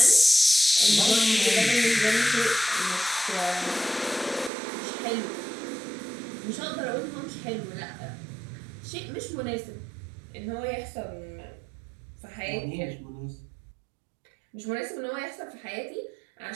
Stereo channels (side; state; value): left; drops out; at 4.5 s